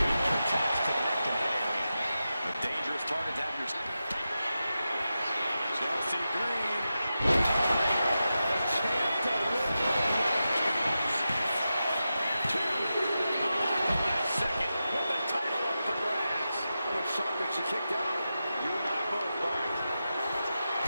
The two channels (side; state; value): both; inverted; correlation -0.91